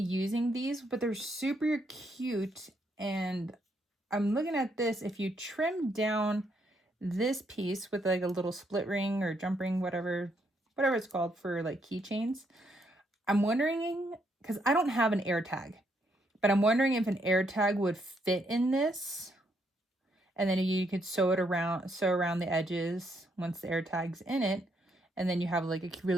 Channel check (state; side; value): normal; both; correlation 0.74